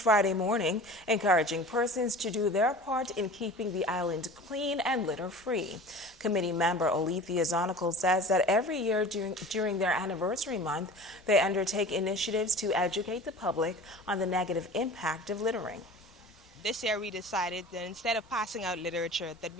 morning, encouraging persons to do their part in keeping the island clean and litter-free. Committee member Olethea Zonical says that every year during their anniversary month, they undertake initiatives to educate the public on the negative impact of littering. This year we decided that instead of passing out literature, that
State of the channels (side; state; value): both; normal; correlation 0.39